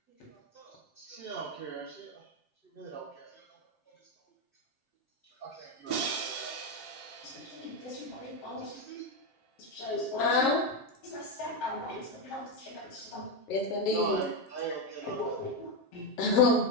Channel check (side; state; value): right; late; 7.6 ms